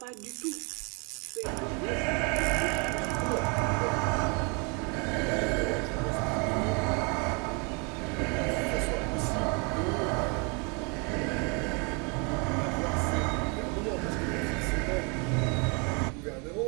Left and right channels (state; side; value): quieter; left; 32.9 dB